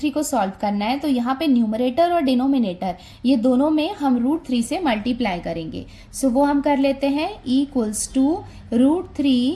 को सॉल्व करना है, तो यहाँ पे न्यूमरेटर और डिनोमिनेटर ये दोनों में हम √3 से मल्टीप्लाई करेंगे। सो वो हम कर लेते हैं, इक्वल्स टू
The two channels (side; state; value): both; identical; correlation 1.00